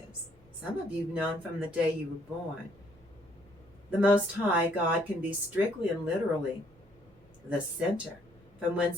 Some of you have known from the day you were born. The Most High God can be strictly and literally the center, from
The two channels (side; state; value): both; normal; correlation 0.66